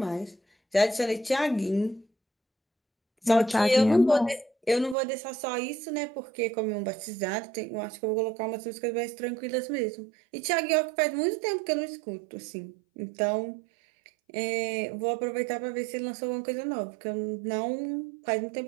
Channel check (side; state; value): left; drops out; at 5.0 s